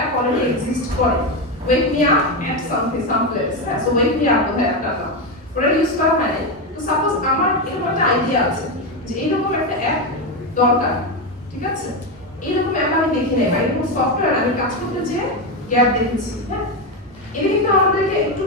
অলরেডি এক্সিস্ট করে, ওয়েক me up at some place. হ্যাঁ, সো ওয়েক মি আপ বোধহয় অ্যাপটা না, ওটা ইউজ করা হয়নি। তো সাপোজ আমার এরকম একটা আইডিয়া আছে যে এইরকম একটা অ্যাপ দরকার। ঠিক আছে, এইরকম অ্যাপ আমি দেখি নাই বা এরকম সফটওয়্যার আমি কাজ করতে যেয়ে গ্যাপ দেখেছি। হ্যাঁ, এটা কিন্তু আমাদেরকে একটু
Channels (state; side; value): normal; both; correlation 0.11